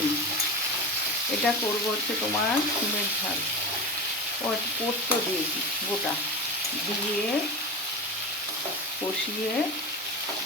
এটা করবো হচ্ছে তোমার সিমের ঝাল। পোস্ত দিয়েছি গোটা, দিয়ে কষিয়ে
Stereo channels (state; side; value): normal; both; correlation 0.24